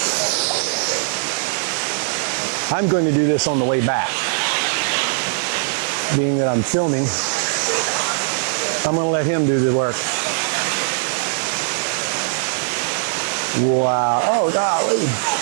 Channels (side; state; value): left; silent; digital silence